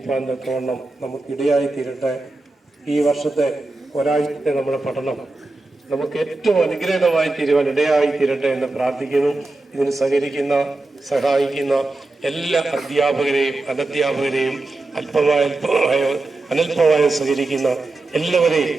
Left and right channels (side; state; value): left; quieter; 3.1 dB